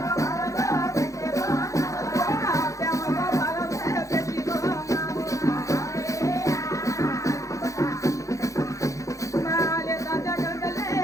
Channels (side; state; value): right; late; 0.15 ms